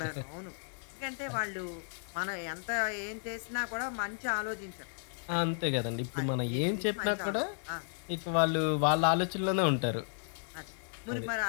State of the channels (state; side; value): silent; right; digital silence